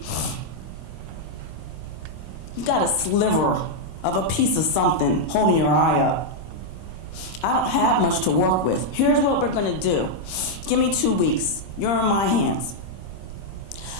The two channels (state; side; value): late; right; 26 ms